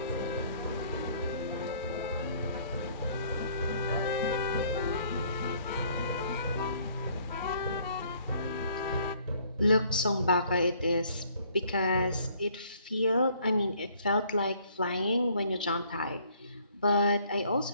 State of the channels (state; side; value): inverted; both; correlation -0.62